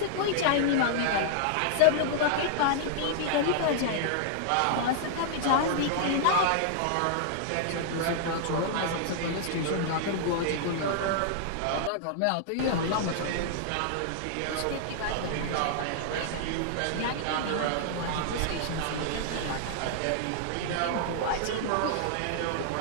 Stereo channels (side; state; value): both; different; correlation -0.01